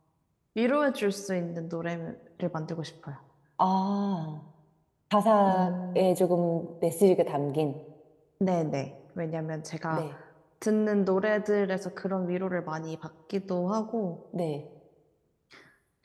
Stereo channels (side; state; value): both; identical; correlation 1.00